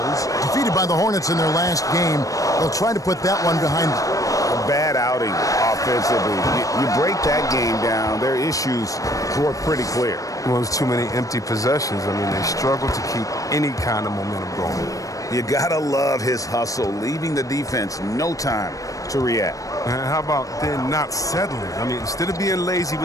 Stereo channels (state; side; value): late; right; 0.16 ms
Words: Defeated by the Hornets in their last game, they'll try to put that one behind them. A bad outing offensively. You break that game down, their issues were pretty clear. Well, there's too many empty possessions. I mean, they struggle to keep any kind of momentum going. You gotta love his hustle, leaving the defense no time to react. And how about then not settling? I mean, instead of being lazy